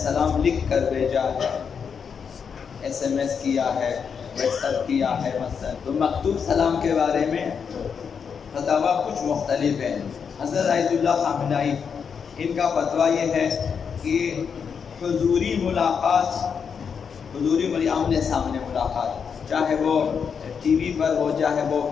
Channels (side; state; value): right; quieter; 6.5 dB